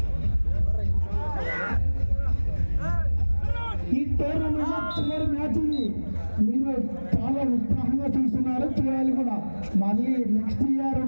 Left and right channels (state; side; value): inverted; both; correlation -1.00